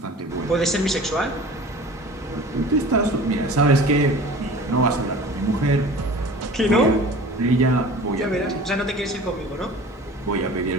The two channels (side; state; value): both; normal; correlation 0.42